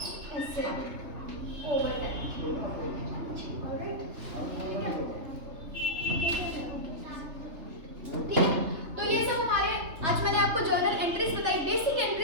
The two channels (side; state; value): left; late; 3.3 ms